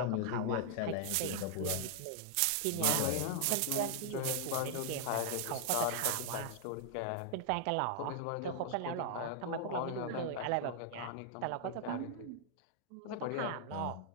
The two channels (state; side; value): different; both; correlation -0.01